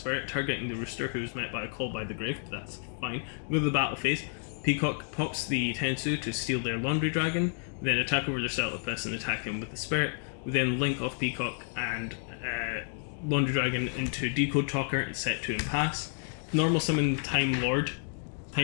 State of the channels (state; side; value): silent; right; 56 dB below the other